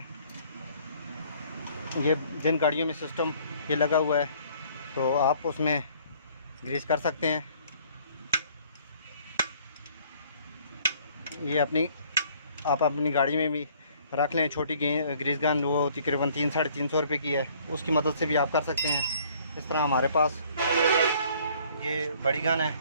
ये जिन गाड़ियों में सिस्टम ये लगा हुआ है तो आप उसमें ग्रीस कर सकते हैं। ये आप अपनी गाड़ी में भी रख लें। छोटी ग्रीस गन वो तकरीबन 300-350 रुपये की है, उसकी मदद से भी आप कर सकते हैं। इस तरह हमारे पास ये बड़ी गन है,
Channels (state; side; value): inverted; both; correlation -0.59